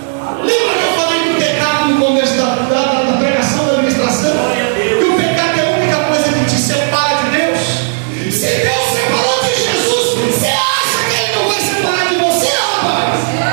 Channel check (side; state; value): left; silent; digital silence